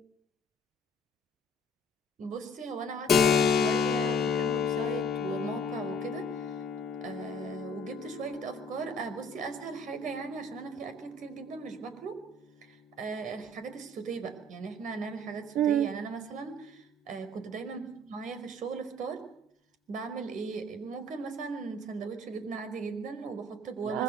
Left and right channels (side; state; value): both; normal; correlation 0.54